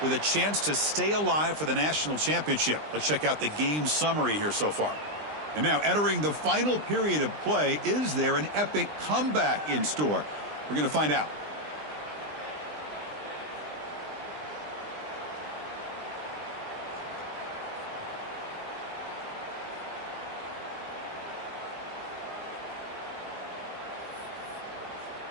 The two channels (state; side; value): late; left; 20 ms